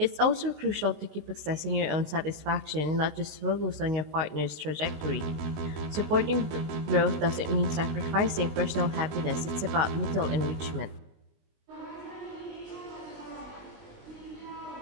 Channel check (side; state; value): left; late; 19 ms